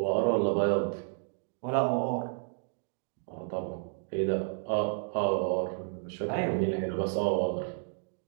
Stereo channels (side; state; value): left; silent; digital silence